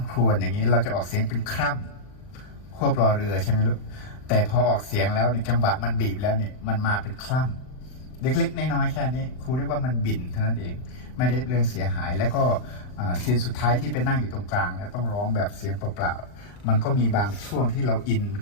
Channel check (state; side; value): late; right; 39 ms